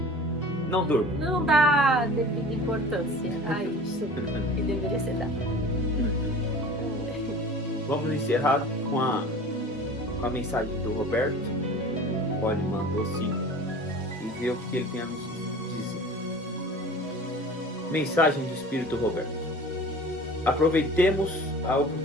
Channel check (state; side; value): normal; both; correlation 0.40